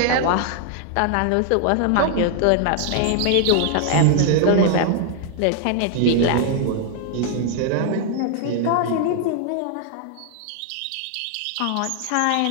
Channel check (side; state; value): both; different; correlation 0.00